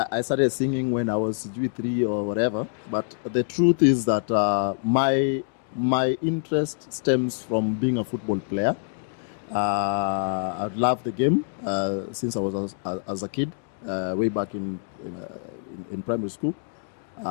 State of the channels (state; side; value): silent; right; digital silence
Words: started singing when I was G3 or whatever, but the truth is that my interest stems from being a football player. I love the game since I was as a kid, way back in primary school.